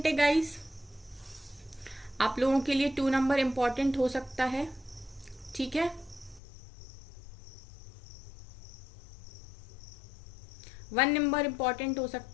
है गाइस, आप लोगों के लिए 2 नंबर इंपॉर्टेंट हो सकता है, ठीक है। 1 नंबर इंपॉर्टेंट हो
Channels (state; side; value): drops out; right; at 6.4 s